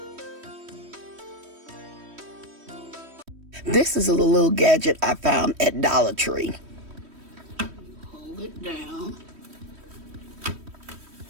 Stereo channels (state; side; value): late; left; 3.1 ms